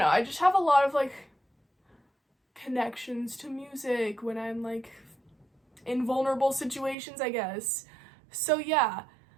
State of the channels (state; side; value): drops out; left; at 7.0 s